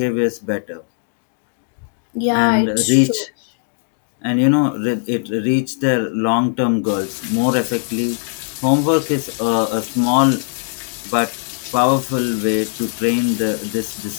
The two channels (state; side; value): silent; right; digital silence